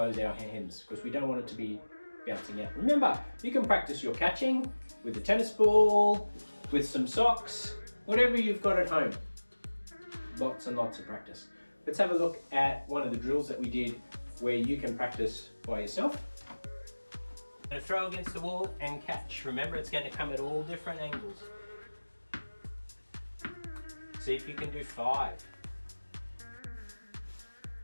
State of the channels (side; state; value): both; inverted; correlation -1.00